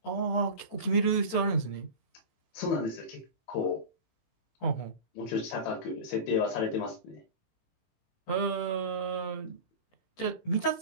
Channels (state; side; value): late; right; 18 ms